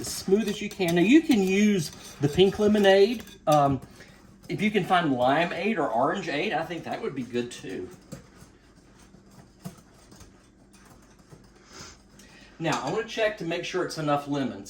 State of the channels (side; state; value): both; identical; correlation 1.00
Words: smooth as you can. Now you can use the pink lemonade. If you can find limeade or orangeade, I think that would be good too. Now I want to check to make sure it's enough lemon,